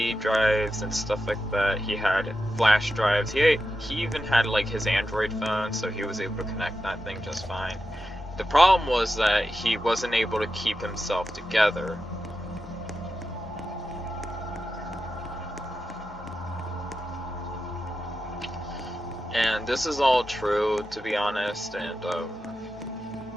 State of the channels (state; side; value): normal; both; correlation 0.90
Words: drives and stuff like that. He had flash drives. He even had like his Android phone, so he was able to connect that thing just fine. The problem was that he wasn't able to keep himself together. And this is all true, to be honest, and